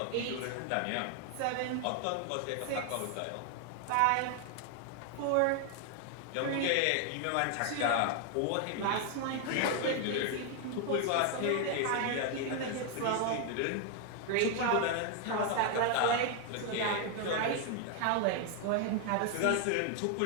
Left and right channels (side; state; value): both; different; correlation 0.00